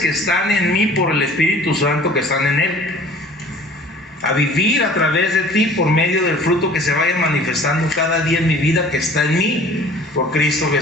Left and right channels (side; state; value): both; normal; correlation 0.48